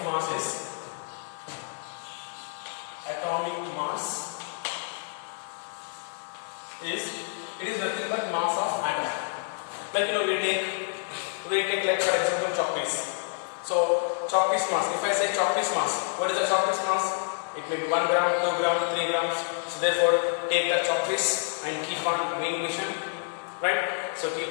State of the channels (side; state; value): right; silent; 59 dB below the other